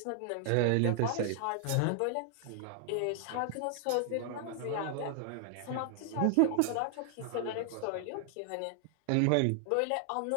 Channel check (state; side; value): different; both; correlation 0.00